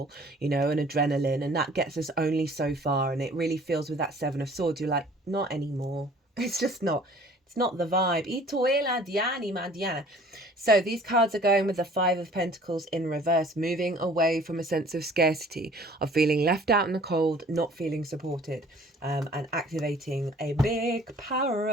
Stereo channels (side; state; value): both; normal; correlation 0.52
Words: and adrenaline, and that gets us only so far. And it really feels with that Seven of Swords, you're like, not anymore. It's just not. It's not the vibe. So these cards are going with the Five of Pentacles in reverse, moving away from a sense of scarcity, of feeling left out in the cold, not feeling supported, and activating a big power